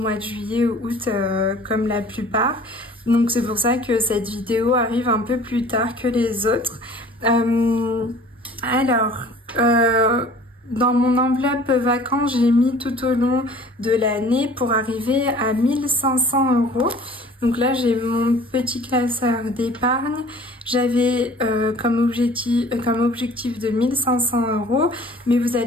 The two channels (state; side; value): normal; both; correlation 0.48